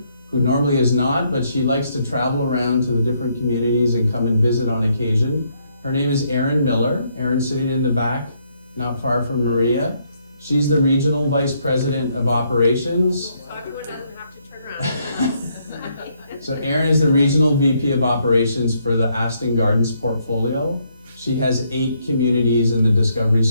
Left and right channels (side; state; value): both; inverted; correlation -0.73